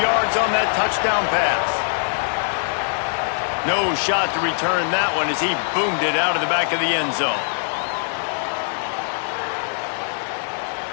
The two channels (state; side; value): silent; right; digital silence